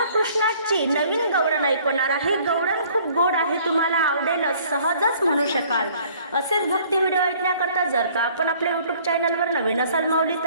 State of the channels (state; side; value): inverted; both; correlation -0.57